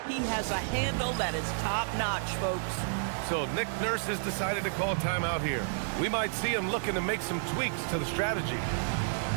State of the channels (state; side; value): silent; left; digital silence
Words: he has a handle that is top-notch, folks. So Nick Nurse has decided to call timeout here. We might see him looking to make some tweaks to the strategy.